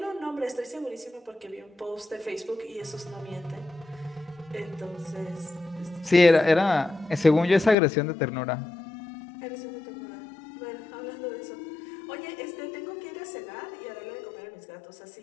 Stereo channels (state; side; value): drops out; right; at 7.8 s